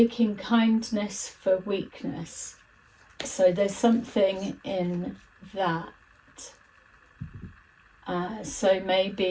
kindness for weakness. So there's something in that. So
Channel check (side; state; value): both; identical; correlation 1.00